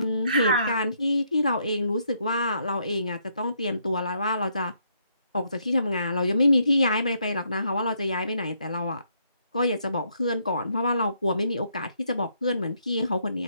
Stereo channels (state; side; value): inverted; both; correlation -0.73